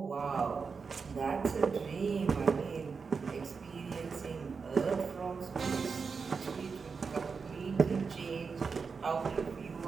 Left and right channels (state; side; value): quieter; left; 5.2 dB